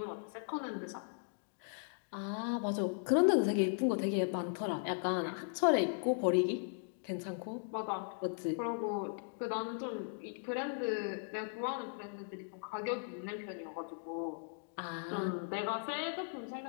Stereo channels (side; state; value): right; silent; digital silence